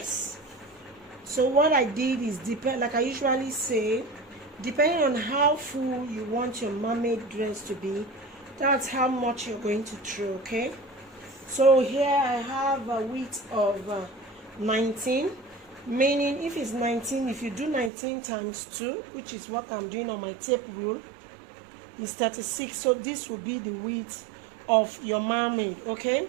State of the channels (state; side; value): drops out; left; at 17.9 s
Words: So what I did is, like I usually say, depending on how full you want your mermaid dress to be, that's how much you're going to throw. Okay, so here I have a width of 19, meaning if it's 19, if you do 19 times 2, which is what I'm doing on my tape rule, is 36. So this will be the width of your mermaid. Okay,